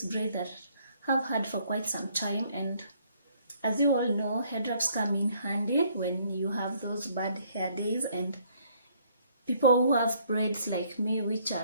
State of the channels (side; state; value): both; inverted; correlation -0.65